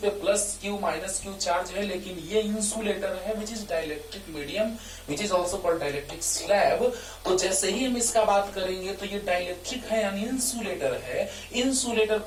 plus Q minus Q charge है, लेकिन ये इंसुलेटर है which is dielectric medium, which is also called dielectric slab. तो जैसे ही हम इसका बात करेंगे तो ये डाइलेक्ट्रिक है यानी इंसुलेटर है. इंसुलेटर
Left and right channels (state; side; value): identical; both; correlation 1.00